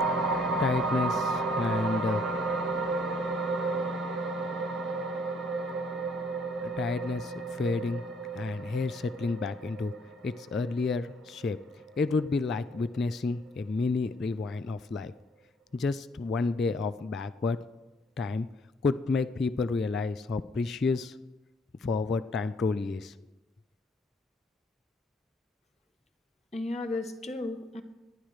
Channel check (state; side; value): normal; both; correlation 0.64